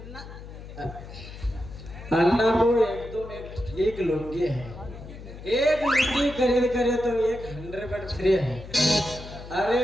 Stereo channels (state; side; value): noise; left; hum, 14 dB below the sound